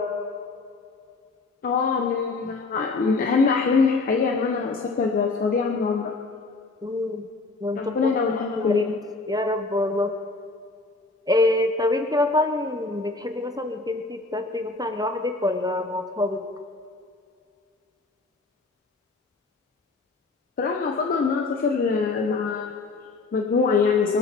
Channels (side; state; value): right; quieter; 3.6 dB